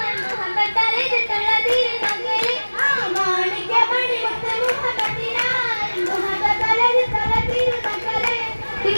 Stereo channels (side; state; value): both; inverted; correlation -1.00